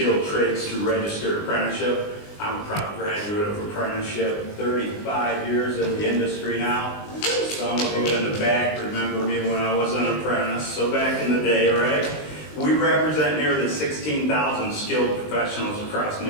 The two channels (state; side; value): late; right; 20 ms